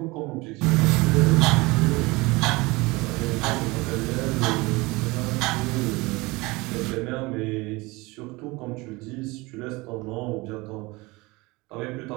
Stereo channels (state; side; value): quieter; left; 23.3 dB